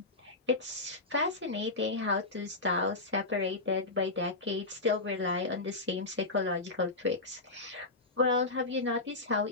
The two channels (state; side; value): quieter; right; 3.2 dB